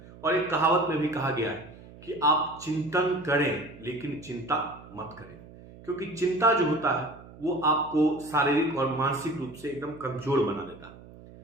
और एक कहावत में भी कहा गया है कि आप चिंतन करें लेकिन चिंता मत करें, क्योंकि चिंता जो होता है वो आपको शारीरिक और मानसिक रूप से एकदम कमजोर बना देता है।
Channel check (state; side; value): noise; right; hum, 19 dB below the sound